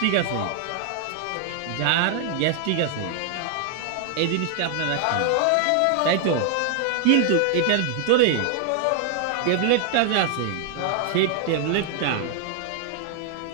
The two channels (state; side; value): different; both; correlation 0.00